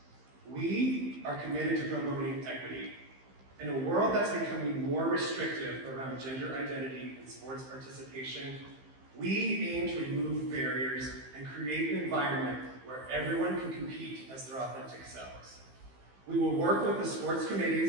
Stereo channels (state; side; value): late; left; 15 ms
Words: We are committed to promoting equity. In a world that's becoming more restrictive around gender identity and sports participation, we aim to remove barriers and create an environment where everyone can compete as their authentic selves. We will work with the sports